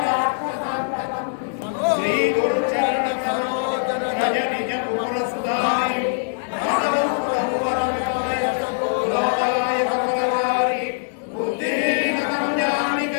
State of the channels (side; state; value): right; silent; digital silence